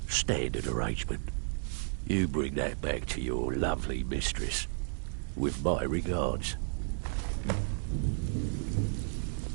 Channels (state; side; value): silent; left; digital silence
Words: standard arrangement. You bring that back to your lovely mistress, with my regards.